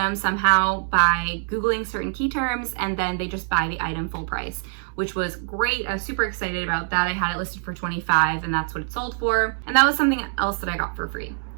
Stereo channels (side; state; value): left; silent; 63 dB below the other